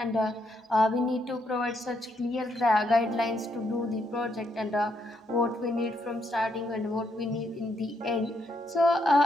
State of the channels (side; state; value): both; normal; correlation 0.77